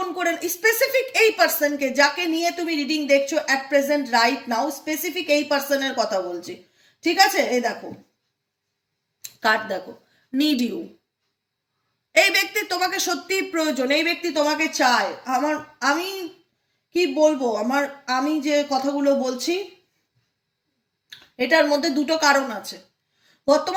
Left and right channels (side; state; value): both; identical; correlation 1.00